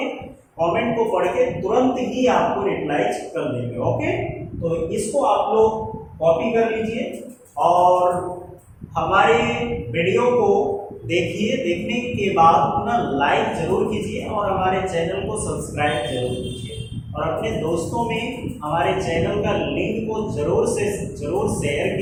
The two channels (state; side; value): identical; both; correlation 1.00